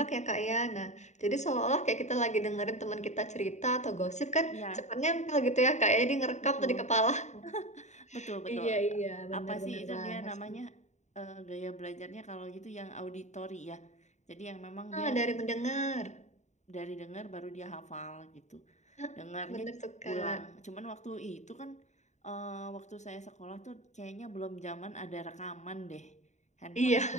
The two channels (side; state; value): right; late; 0.34 ms